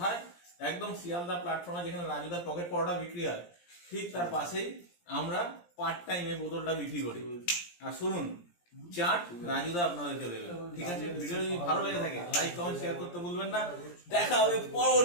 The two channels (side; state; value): right; late; 17 ms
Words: একদম শিয়ালদা প্ল্যাটফর্মে যেখানে রাজুদার পকেট পরোটা বিক্রি হয় ঠিক তার পাশেই আমরা পার্ট টাইম এই বোতলটা বিক্রি করি। আর শুনুন, চাট রাজুদা আপনাদেরকে দেবে। ঠিক আছে, ভিডিও যদি ভালো লেগে থাকে লাইক কমেন্ট শেয়ার করতে ভুলবেন না। দেখা হবে